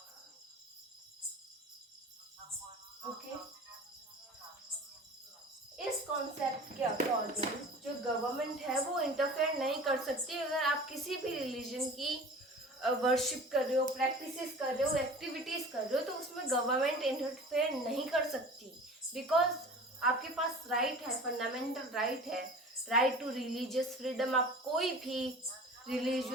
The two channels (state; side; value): normal; both; correlation 0.40